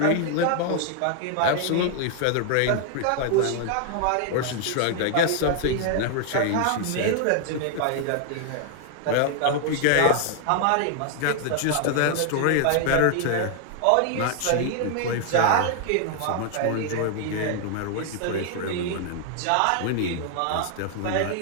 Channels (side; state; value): both; different; correlation 0.00